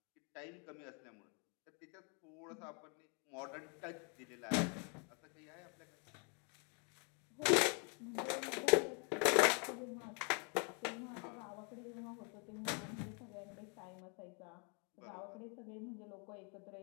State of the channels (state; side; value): quieter; right; 36.9 dB